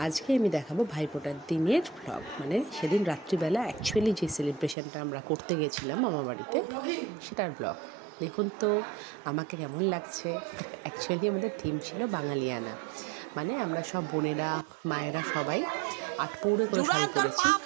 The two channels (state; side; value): drops out; left; at 4.8 s